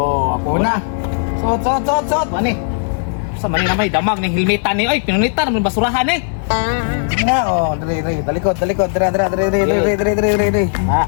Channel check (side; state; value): right; silent; digital silence